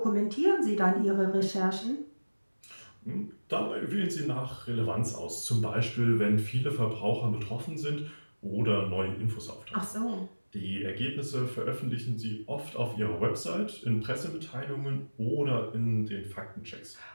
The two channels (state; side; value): inverted; both; correlation -1.00